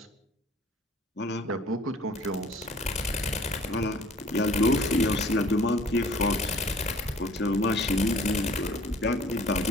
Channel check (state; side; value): normal; both; correlation 0.52